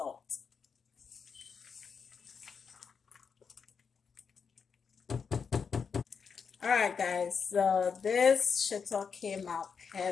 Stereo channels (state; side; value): quieter; right; 6.0 dB